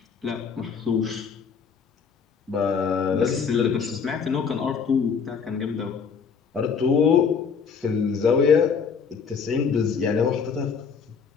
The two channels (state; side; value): quieter; right; 6.1 dB